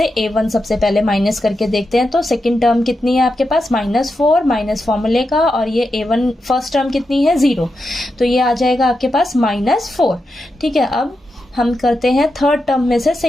A1 सबसे पहले माइनस करके देखते हैं। तो सेकेंड टर्म कितनी है आपके पास, -4 माइनस फॉर्मूले का, और ये A1 फर्स्ट टर्म कितनी है 0, तो ये आ जाएगा आपके पास -4, ठीक है। अब हम करते हैं थर्ड टर्म में से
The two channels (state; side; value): normal; both; correlation 0.88